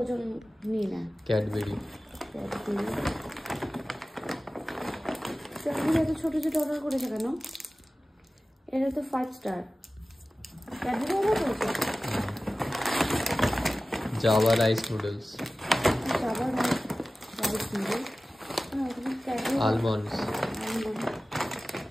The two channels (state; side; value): normal; both; correlation 0.96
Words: ওজন নিই না। ক্যাডবেরি এত ছোটো ছোটো অর্ডার করেছে কেন? এটা তো 5 স্টার। ক্যাডবেরি অর্ডার করেছে। Java rice noodles, almonds,